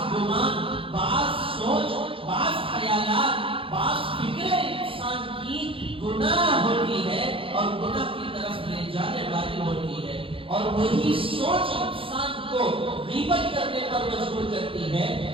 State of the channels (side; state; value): left; late; 0.26 ms